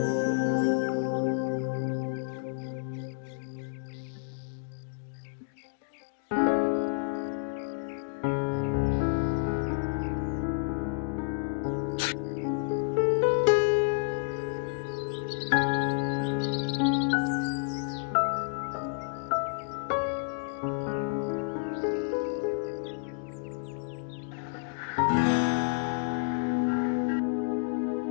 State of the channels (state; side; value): silent; right; digital silence